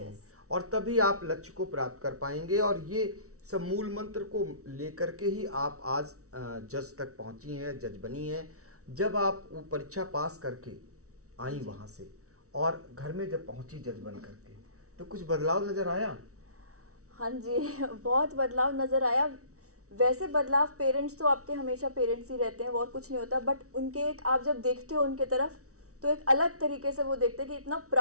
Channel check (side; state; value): left; late; 0.64 ms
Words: और तभी आप लक्ष्य को प्राप्त कर पाएंगे। और ये सब मूल मंत्र को लेकर के ही आप आज जज तक पहुंची हैं, जज बनी हैं। जब आप वो परीक्षा पास करके आई वहाँ से और घर में जब पहुंची जज बन करके, तो कुछ बदलाव नज़र आया? हाँ जी, बहुत बदलाव नज़र आया। वैसे बदलाव, पेरेंट्स तो आपके हमेशा पेरेंट्स ही रहते हैं, वो और कुछ नहीं होता। बट उनके एक आप जब देखते हो उनके तरफ, तो एक अलग तरीके से वो देखते हैं कि इतना